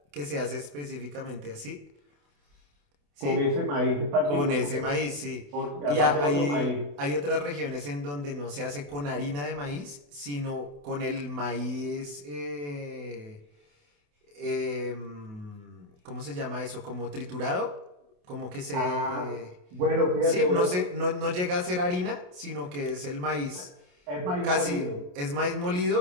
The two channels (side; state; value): left; late; 28 ms